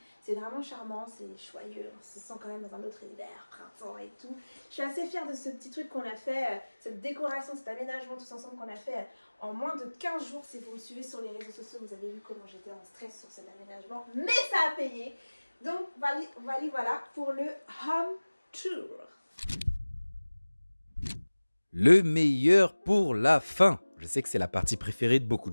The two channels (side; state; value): both; inverted; correlation -1.00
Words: C'est vraiment charmant, c'est joyeux, on se sent quand même dans un autre univers, printemps et tout. Je suis assez fière de ce petit truc qu'on a fait, cette décoration, cet aménagement tous ensemble qu'on a fait en moins de 15 jours. Si vous me suivez sur les réseaux sociaux, vous avez vu comment j'étais en stress sur cet aménagement, mais ça a payé. Donc voilà pour le home tour. Le meilleur pour la fin. Je sais que c'est la partie préférée de beaucoup